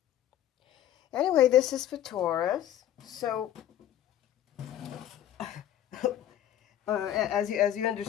Anyway, this is for Taurus. So, as you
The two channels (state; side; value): quieter; right; 11.6 dB